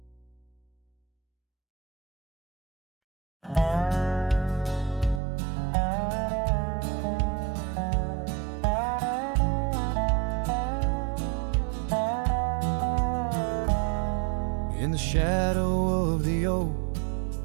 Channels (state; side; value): drops out; left; at 5.2 s